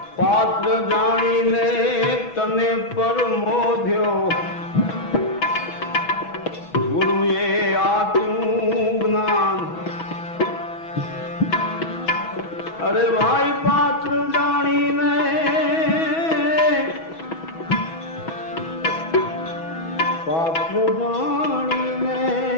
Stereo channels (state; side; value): late; right; 6.1 ms